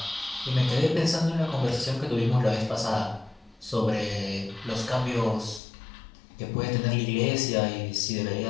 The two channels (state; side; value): drops out; right; at 5.6 s